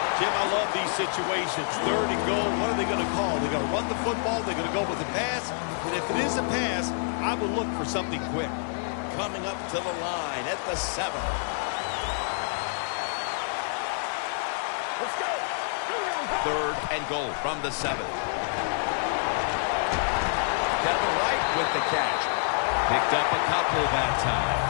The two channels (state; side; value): silent; right; 60 dB below the other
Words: Jim, I love these situations. Third and goal, what are they going to call? They're going to run the football, they're going to go with a pass, and if it is a pass, I will look for something quick. Coming up to the line at the 7. Let's go. Third and goal from the 7. Kevin White with the catch. Picked up a couple that time.